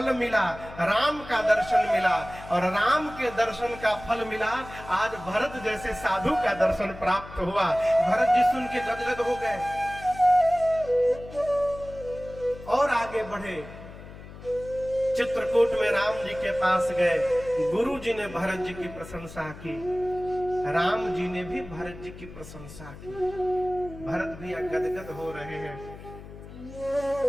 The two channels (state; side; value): noise; left; hum, 15 dB below the sound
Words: मिला, राम का दर्शन मिला, और राम के दर्शन का फल मिला। आज भरत जैसे साधु का दर्शन प्राप्त हुआ। भरत जी सुन के गदगद हो गए और आगे बढ़े। चित्रकूट में राम जी के पास गए। गुरु जी ने भरत जी की प्रशंसा की, राम जी ने भी भरत जी की प्रशंसा की। भरत भी गदगद हो रहे हैं।